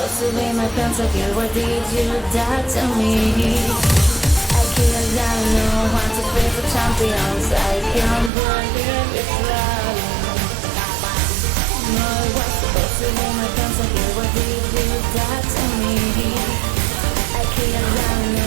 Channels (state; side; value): drops out; left; at 8.3 s